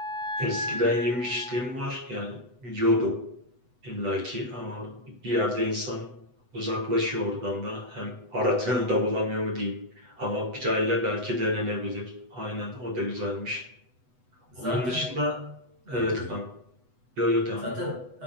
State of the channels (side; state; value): left; late; 8.0 ms